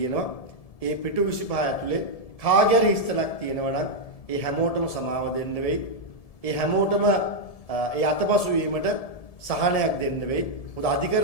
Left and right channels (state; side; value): late; right; 1.7 ms